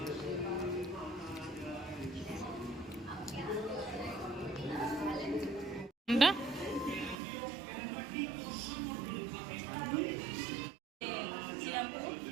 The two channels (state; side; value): drops out; left; at 7.2 s